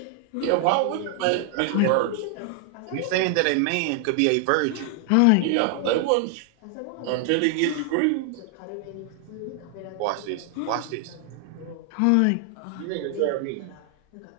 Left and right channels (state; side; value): different; both; correlation 0.00